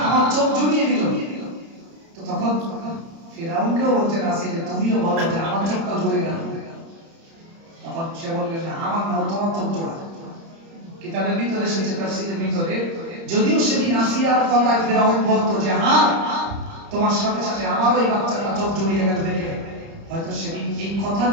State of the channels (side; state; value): left; late; 30 ms